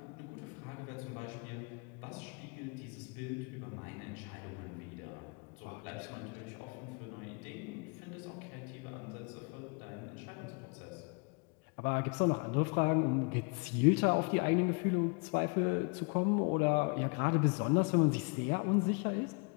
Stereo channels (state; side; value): quieter; right; 33.5 dB